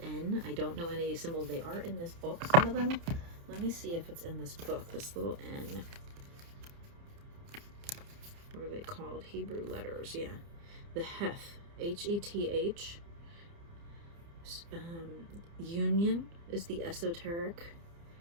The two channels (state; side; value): late; left; 30 ms